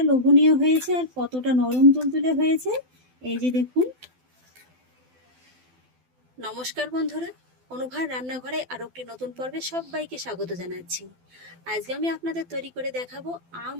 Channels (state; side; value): late; left; 12 ms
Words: লোভনীয় হয়েছে আর কতটা নরম তুলতুলে হয়েছে। এই যে দেখুন। নমস্কার বন্ধুরা, অনুভার রান্নাঘরে আরো একটি নতুন পর্বে সবাইকে স্বাগত জানাচ্ছি। আজকে আমি আপনাদের তৈরি করে দেখাবো আম